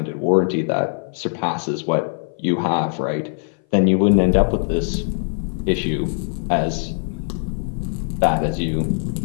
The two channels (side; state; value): right; silent; 59 dB below the other